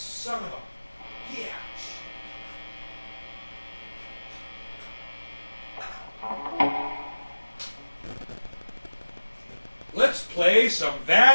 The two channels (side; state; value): both; inverted; correlation -1.00